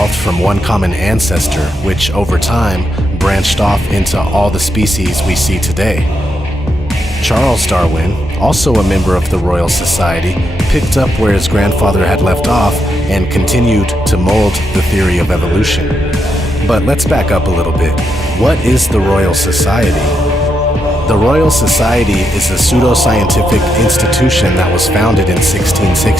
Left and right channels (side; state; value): both; normal; correlation 0.82